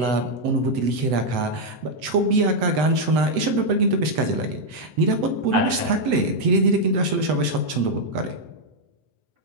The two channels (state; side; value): late; left; 8.0 ms